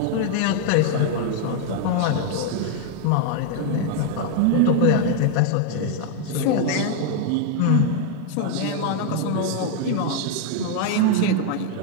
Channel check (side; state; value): both; different; correlation 0.00